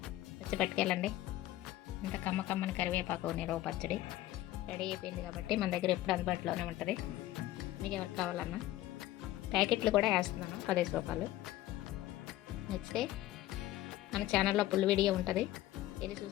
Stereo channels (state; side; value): quieter; right; 15.1 dB